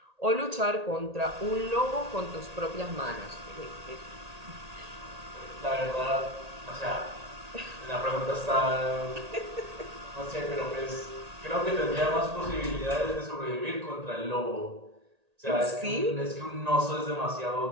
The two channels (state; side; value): late; left; 1.8 ms